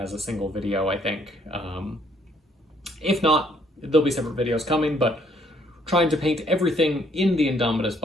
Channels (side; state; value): both; normal; correlation 0.66